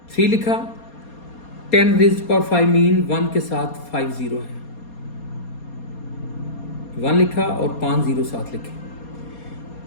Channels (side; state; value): right; late; 4.2 ms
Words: 3 लिखा, 10⁵ मीन 1 के साथ 5 0 है, 1 लिखा और 5 0 साथ लिखे,